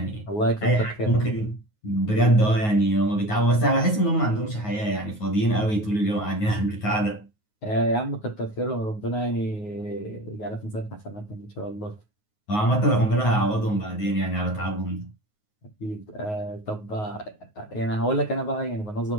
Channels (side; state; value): right; late; 9.5 ms